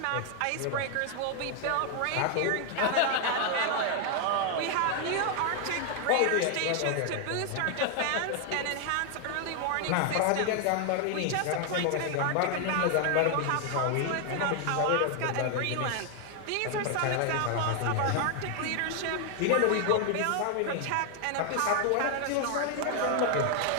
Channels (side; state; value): both; different; correlation 0.00